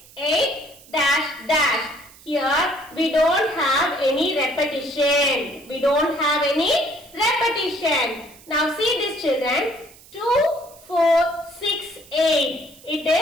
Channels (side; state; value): right; noise; hiss, 23 dB below the sound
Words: 8, dash, dash. Here, we don't have any repetition. We don't have any repetition. Now, see this children. 2, 4, 6, 8. It